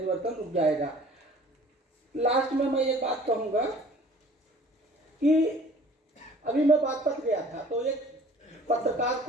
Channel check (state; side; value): normal; both; correlation 0.50